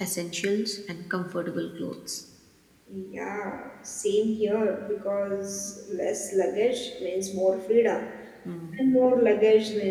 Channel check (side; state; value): both; identical; correlation 1.00